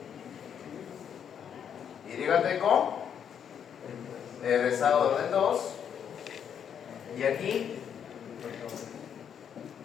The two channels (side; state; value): right; quieter; 8.3 dB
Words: YT con el rezago de orden 2 y aquí